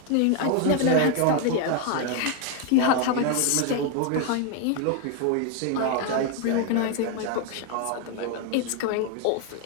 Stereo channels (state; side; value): different; both; correlation 0.01